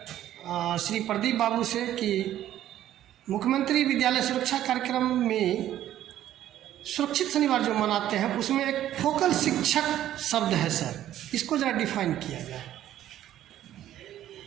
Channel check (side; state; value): left; quieter; 12.3 dB